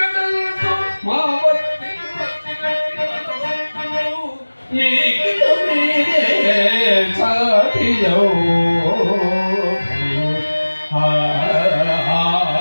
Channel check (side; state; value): both; inverted; correlation -1.00